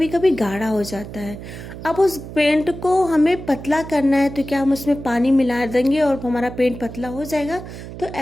कभी गाढ़ा हो जाता है। अब उस पेंट को हमें पतला करना है तो क्या हम उसमें पानी मिला देंगे और हमारा पेंट पतला हो जाएगा? तो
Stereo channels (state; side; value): noise; right; hum, 12 dB below the sound